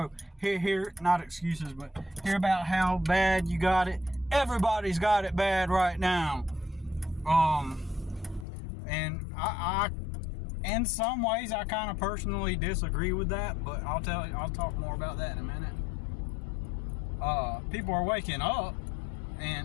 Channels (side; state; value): right; drops out; at 8.5 s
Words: hear not excuses, but hear about how bad you got it. Everybody's got it bad right now. And I in some ways, I kind of personally disagree with that, but I'll talk more about that in a minute. People are waking up,